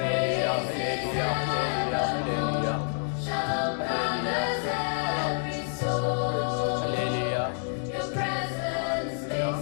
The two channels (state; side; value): silent; right; 58 dB below the other